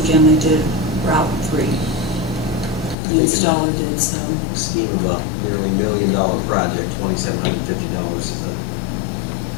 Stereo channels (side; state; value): right; drops out; at 3.0 s